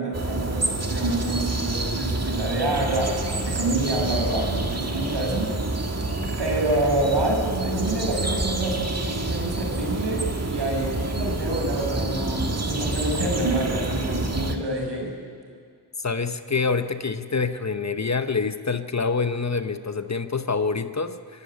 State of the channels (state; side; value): normal; both; correlation 0.20